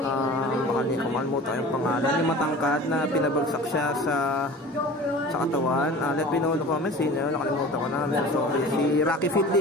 makalimutan yung pangalan, yung matangkad na pinabagsak siya sa katawan. Let me know in the comments, nakalimutan ko na. Sorry, si Rocky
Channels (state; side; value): normal; both; correlation 0.39